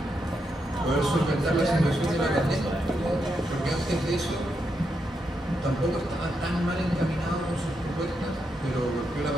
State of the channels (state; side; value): normal; both; correlation 0.83